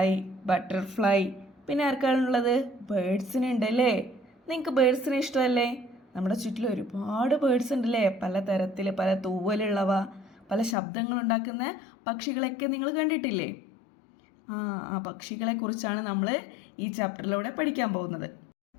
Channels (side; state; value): right; drops out; at 10.8 s